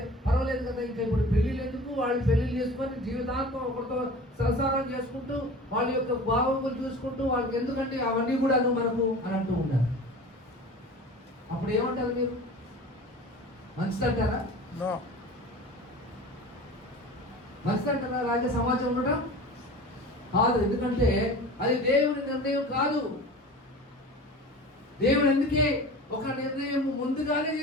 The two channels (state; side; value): normal; both; correlation 0.37